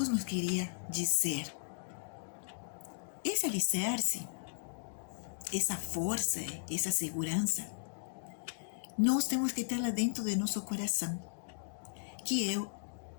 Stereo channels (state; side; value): silent; right; digital silence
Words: nos queria dizer? Esse alicerce, essa força, essa segurança, nós temos que ter lá dentro de nosso coração, que é